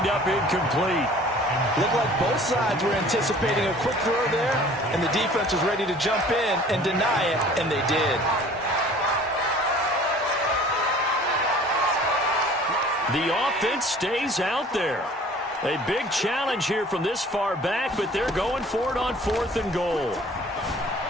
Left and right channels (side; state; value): both; normal; correlation 0.49